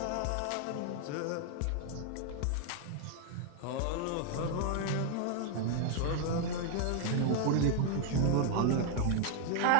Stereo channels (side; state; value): both; different; correlation 0.00